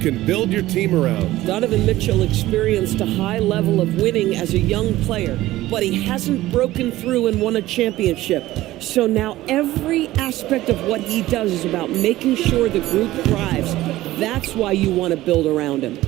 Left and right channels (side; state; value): left; quieter; 16.3 dB